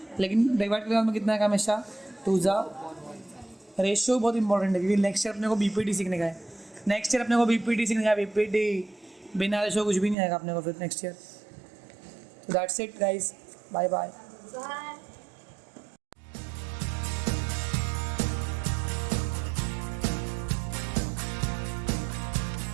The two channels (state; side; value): drops out; left; at 10.2 s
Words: लेकिन डिवाइड करने में कितना है हमेशा 2 जा रेशियो बहुत इंपॉर्टेंट है क्योंकि नेक्स्ट ईयर अपने को BPT सीखने का है नेक्स्ट ईयर अपने को BPT सीखने का है BPT बिना रेशियो कुछ भी नहीं आएगा अपने को फिर next year that's it guys bye bye. Bye.